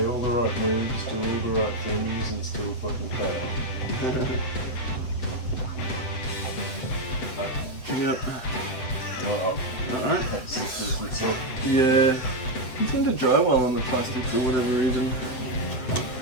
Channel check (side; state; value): right; late; 7.9 ms